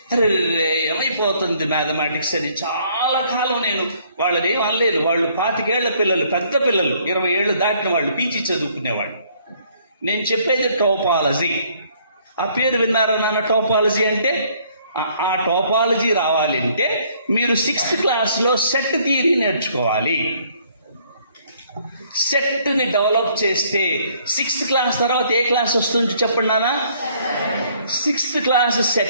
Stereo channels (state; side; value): inverted; both; correlation -0.63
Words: అరే ఏమైపోతుంది మ్యాథమెటిక్స్ అని చాలా కాలం నేను వాళ్ళని ఏం అనలేదు. వాళ్ళు 25 ఏళ్ల పిల్లలు, పెద్ద పిల్లలు, 20 ఏళ్ళు దాటిన వాళ్ళు, పీజీ చదువుకునేవాళ్ళు. నేను చెప్పేది టోపాలజీ. ఆ పేరు విన్నారా నాన్న? టోపాలజీ అంటే, ఆ టోపాలజీ రావాలంటే మీరు 6th క్లాస్లో సెట్ థియరీ నేర్చుకోవాలి. సెట్ని డెవలప్ చేస్తే 6th క్లాస్ తర్వాత ఏ క్లాస్ వస్తుంది చెప్పండి నాన్న? 6th క్లాస్